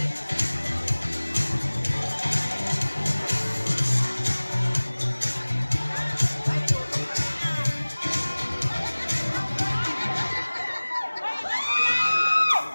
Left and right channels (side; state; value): both; inverted; correlation -1.00